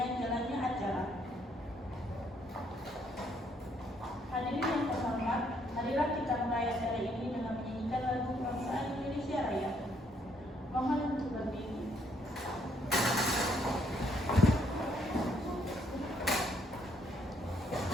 jalannya acara. Hadirin yang terhormat, marilah kita mulai acara ini dengan menyanyikan lagu Kebangsaan Indonesia Raya. Mohon untuk berdiri.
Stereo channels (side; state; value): both; normal; correlation 0.70